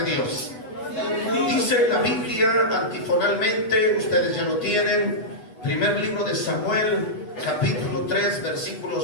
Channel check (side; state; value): right; late; 8.6 ms